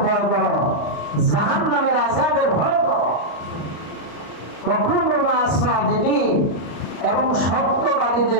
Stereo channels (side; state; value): right; late; 34 ms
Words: ভয় করো, জাহান্নামের আযাবের ভয় করো। ওয়া কুনু মা'আস সাদিকিন, এবং